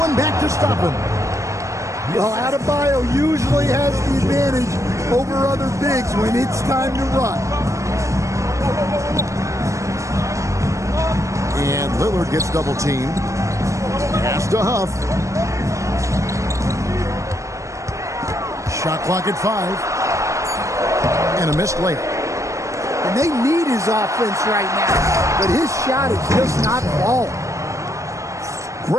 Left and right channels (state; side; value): late; left; 0.15 ms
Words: back to stop him. Well, Adebayo usually has the advantage over other bigs when it's time to run. And Lillard gets double teamed. Pass to Huff. Shot clock at 5. And a missed layup. And they need his offense right now, but his shot is just not falling.